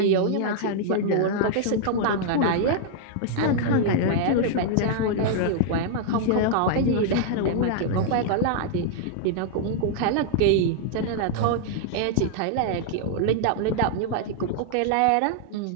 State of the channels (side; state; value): both; different; correlation -0.01